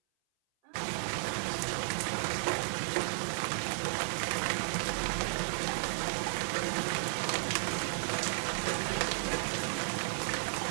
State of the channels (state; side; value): silent; left; 55 dB below the other